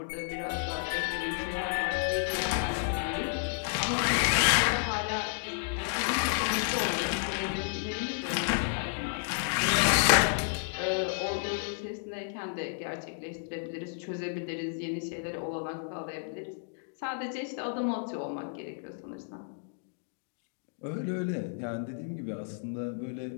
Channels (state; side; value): silent; right; digital silence